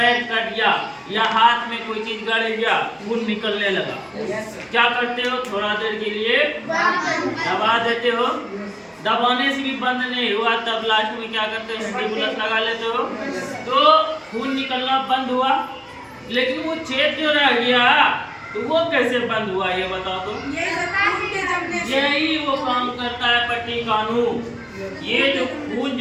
कट गया या हाथ में कोई चीज गड़ गया, खून निकलने लगा, क्या करते हो? थोड़ा देर के लिए दबा देते हो। दबाने से भी बंद नहीं हुआ तब लास्ट में क्या करते हो? एंटीबुलस लगा लेते हो तो खून निकलना बंद हुआ। लेकिन वो छेद जो रह गया तो वो कैसे बंद हुआ ये बताओ तो? यही वो काम करता है पट्टिकाणु। ये जो खून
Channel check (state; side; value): identical; both; correlation 1.00